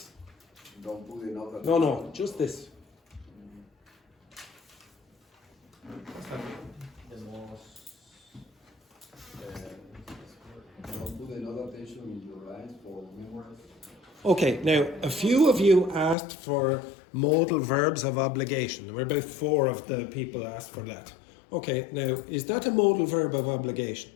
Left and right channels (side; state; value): right; drops out; at 16.2 s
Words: Don't put another. No, just this. What's that mean? Don't put another attention in your lines for memorise. Okay, now a few of you asked for modal verbs of obligation. There were about 4 of the people asked for that. Okay, now is that a modal verb of obligation?